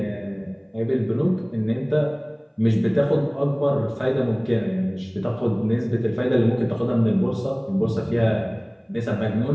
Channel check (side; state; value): both; identical; correlation 1.00